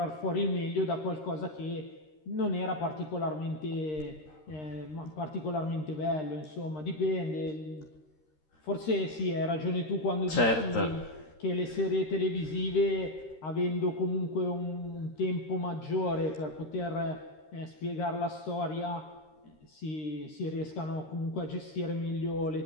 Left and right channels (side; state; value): right; late; 13 ms